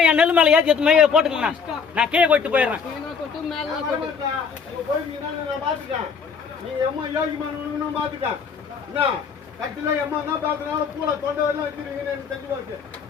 என் நெல் மேல ஏத்தி எடுத்து போட்டுக்கண்ணா. நான் கே கொட்டு போயிடுறேன்.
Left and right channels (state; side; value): quieter; right; 5.9 dB